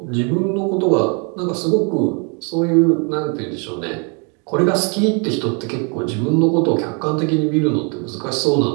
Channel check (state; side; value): quieter; left; 35.6 dB